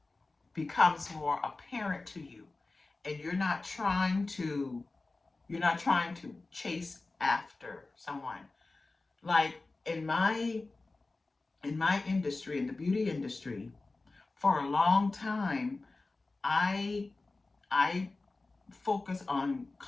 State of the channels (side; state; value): right; quieter; 3.4 dB